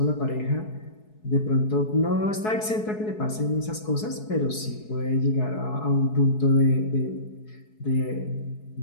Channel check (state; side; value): late; right; 4.7 ms